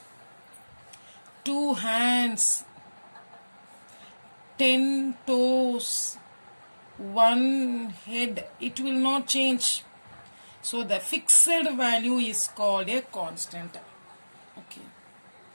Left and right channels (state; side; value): inverted; both; correlation -1.00